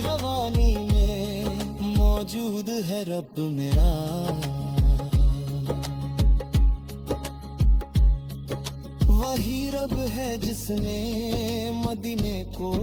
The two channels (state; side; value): identical; both; correlation 1.00